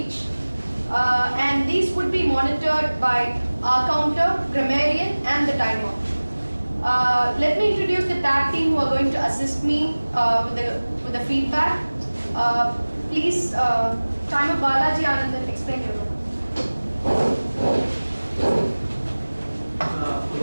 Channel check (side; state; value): both; inverted; correlation -1.00